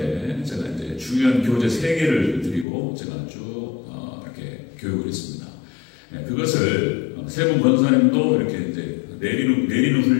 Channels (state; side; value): drops out; right; at 2.7 s